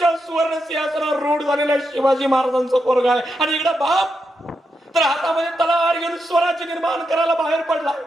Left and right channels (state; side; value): normal; both; correlation 0.85